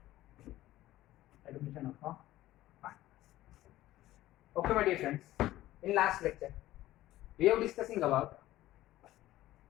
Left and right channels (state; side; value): quieter; right; 15.4 dB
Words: Admission of a partner. Okay, my dear friends, in last lecture, we are discussing about